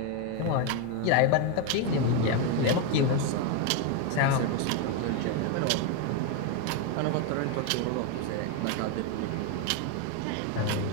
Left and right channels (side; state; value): both; different; correlation 0.02